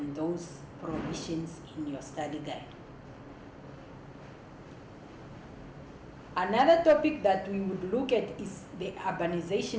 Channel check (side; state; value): both; identical; correlation 1.00